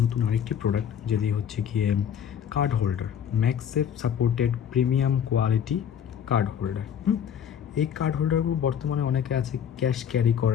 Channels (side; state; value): right; quieter; 8.6 dB